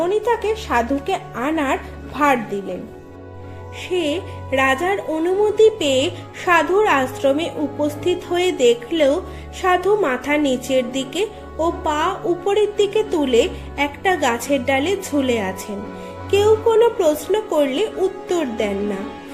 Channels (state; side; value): identical; both; correlation 1.00